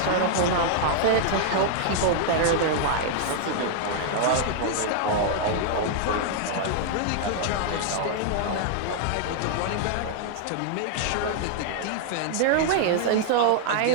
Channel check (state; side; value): different; both; correlation -0.01